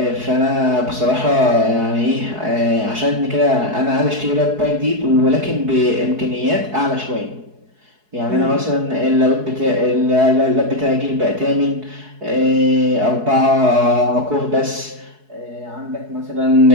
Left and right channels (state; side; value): late; left; 4.7 ms